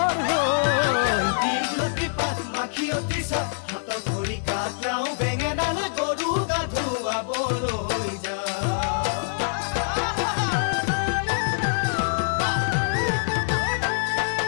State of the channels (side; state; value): right; silent; digital silence